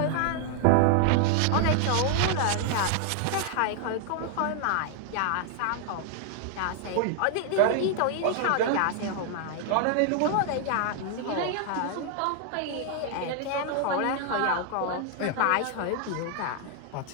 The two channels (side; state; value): both; different; correlation 0.00